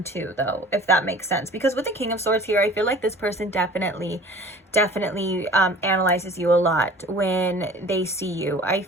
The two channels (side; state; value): both; normal; correlation 0.45